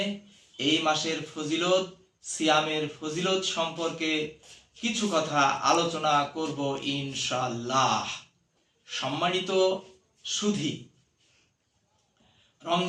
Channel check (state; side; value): identical; both; correlation 1.00